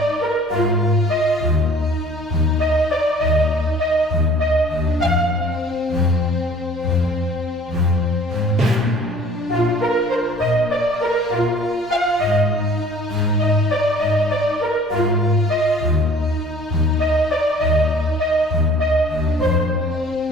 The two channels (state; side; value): normal; both; correlation 0.52